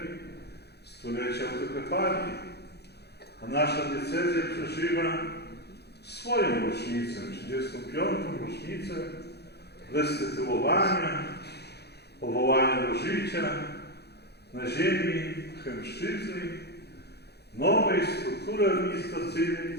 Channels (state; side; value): late; right; 0.48 ms